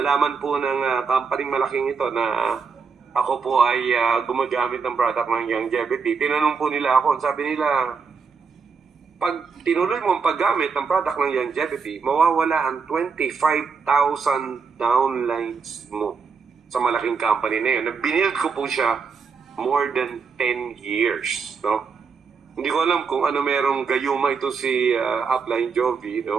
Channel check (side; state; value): left; quieter; 5.4 dB